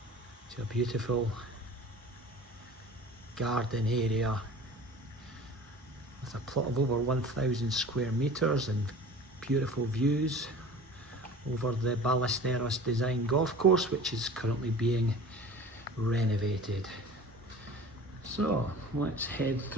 to a beautiful garden area with a plot of over 1,000 square meters and beautiful views over the Ballesteros design golf course, which is currently being renovated. So let's head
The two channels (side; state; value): both; normal; correlation 0.41